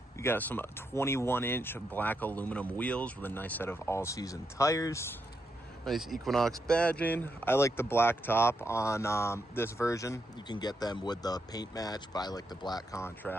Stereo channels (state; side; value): normal; both; correlation 0.82